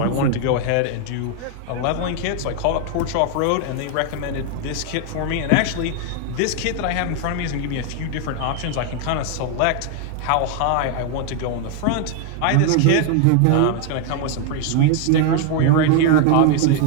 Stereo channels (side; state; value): both; different; correlation 0.00